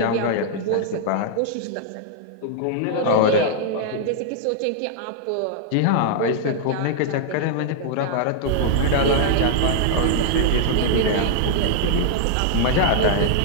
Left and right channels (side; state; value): both; different; correlation -0.01